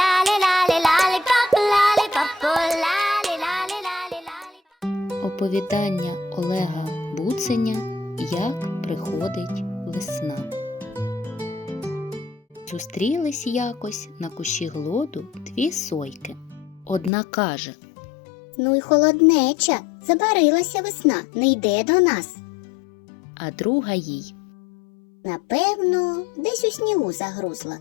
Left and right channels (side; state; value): right; drops out; at 17.1 s